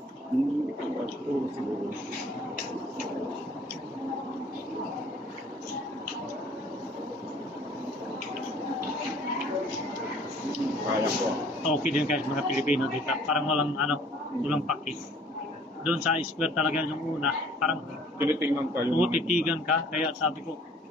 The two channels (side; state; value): both; normal; correlation 0.54